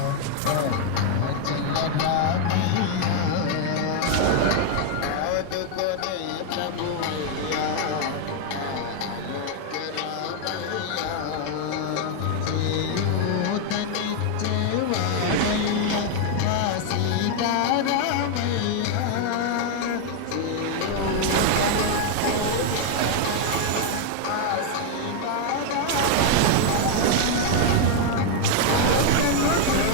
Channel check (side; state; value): both; different; correlation 0.00